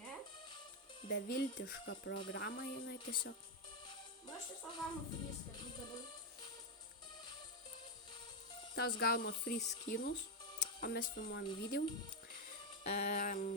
Ne? Beviltiška programa jinai tiesiog. Aš tiesiog gaunu free dabar. Tas gauna free skinus, o mes filmuojam video. Ką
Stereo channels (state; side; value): normal; both; correlation 0.04